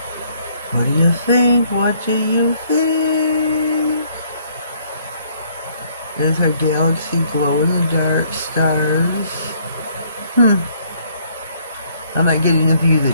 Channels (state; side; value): inverted; both; correlation -0.65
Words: What do you think? What do you think? There's our galaxy glow in the dark stars. I'm not getting the view